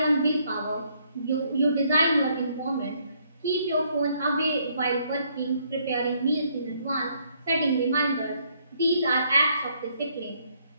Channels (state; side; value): inverted; both; correlation -0.69